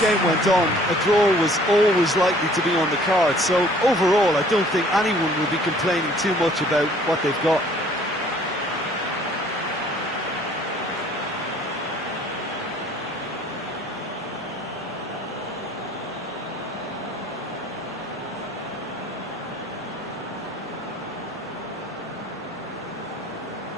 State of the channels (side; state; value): both; normal; correlation 0.55